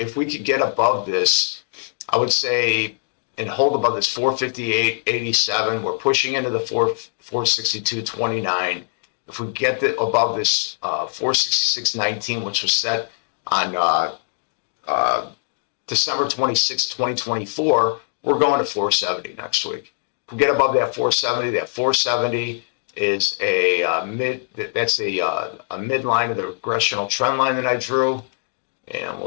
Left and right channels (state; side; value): silent; right; digital silence